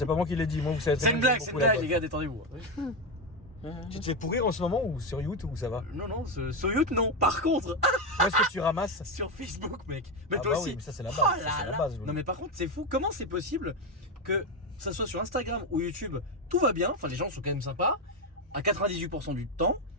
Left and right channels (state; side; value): normal; both; correlation 0.10